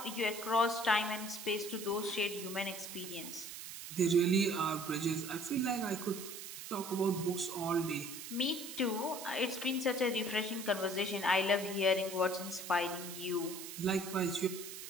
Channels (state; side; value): noise; right; hiss, 10 dB below the sound